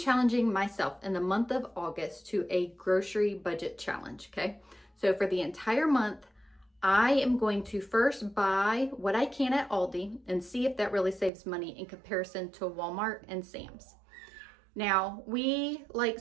myself in the month of August to a grocery budget challenge, okay? So for the entire month, I am going to first buy what I can at Aldi and see if that really saves money in comparison to Walmart and Sam's. Now, we like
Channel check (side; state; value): left; drops out; at 11.3 s